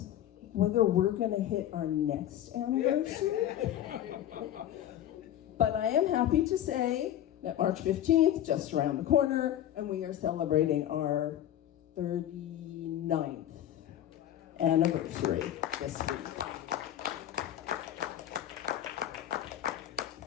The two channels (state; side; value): quieter; right; 11.7 dB